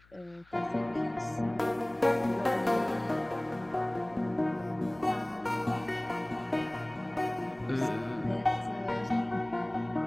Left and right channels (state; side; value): noise; left; hum, 29 dB below the sound